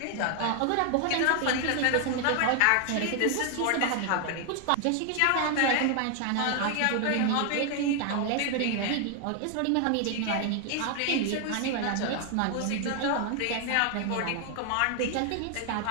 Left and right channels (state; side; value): different; both; correlation 0.00